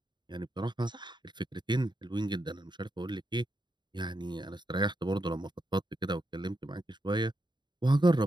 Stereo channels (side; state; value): left; late; 0.22 ms